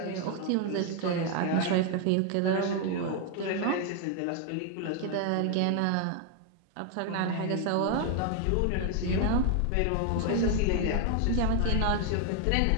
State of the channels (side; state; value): both; different; correlation 0.01